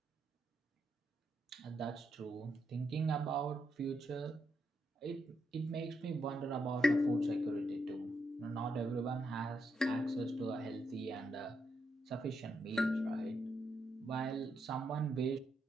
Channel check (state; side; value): normal; both; correlation 0.80